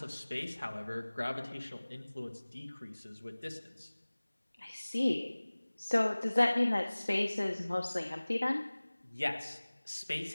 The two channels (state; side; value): inverted; both; correlation -1.00